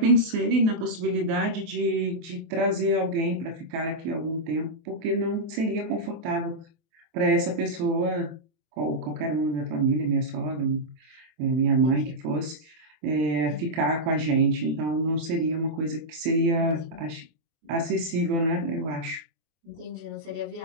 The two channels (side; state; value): left; late; 24 ms